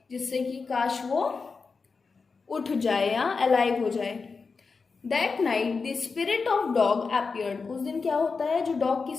जिससे कि काश वो उठ जाए या अलाइव हो जाए. That night the spirit of dog appeared, उस दिन क्या होता है, जो डॉग की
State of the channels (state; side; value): quieter; right; 4.7 dB